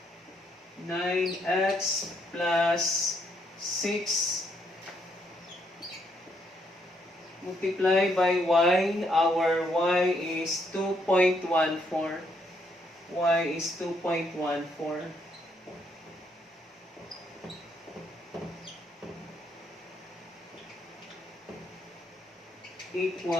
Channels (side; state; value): both; normal; correlation 0.73